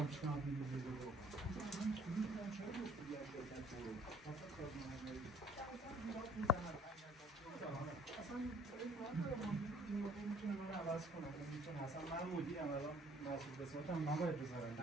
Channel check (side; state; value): both; normal; correlation 0.57